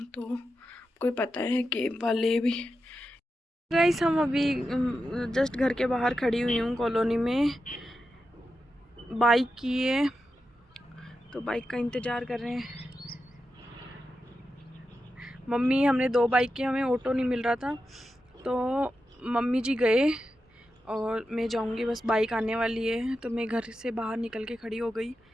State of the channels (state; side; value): normal; both; correlation 0.89